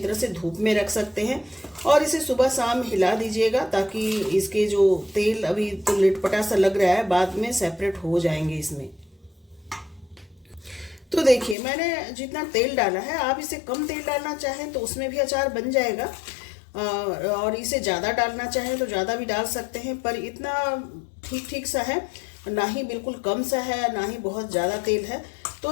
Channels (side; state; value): right; drops out; at 11.6 s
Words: से धूप में रख सकते हैं और इसे सुबह शाम हिला दीजिएगा, ताकि इसके जो तेल अभी तो लिटपटा सा लग रहा है, बाद में सेपरेट हो जाएंगे इसमें। तो देखिए मैंने जितना तेल डाला है, आप इसे कम तेल डालना चाहें तो उसमें भी अचार बन जाएगा, और इसे ज़्यादा डालना चाहें तो ज़्यादा भी डाल सकते हैं। पर इतना ठीक ठीक सा है, ना ही बिल्कुल कम सा है, ना ही बहुत ज़्यादा तेल है।